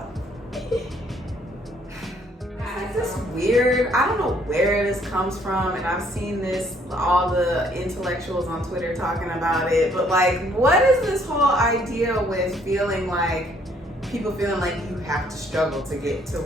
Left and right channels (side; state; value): both; normal; correlation 0.65